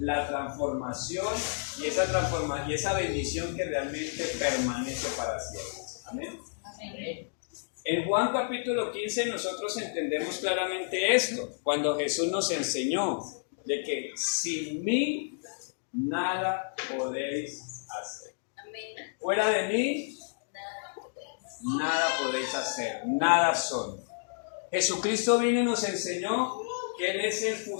transformación y esa bendición que realmente permanece para siempre. Amén. Amén. En Juan capítulo 15 nosotros entendemos claramente esto, cuando Jesús nos enseñó de que sin mí nada podéis hacer. Fuera de mí nada podéis hacer, nada son. Jesucristo vino y nos enseñó que Él es el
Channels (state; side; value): silent; right; digital silence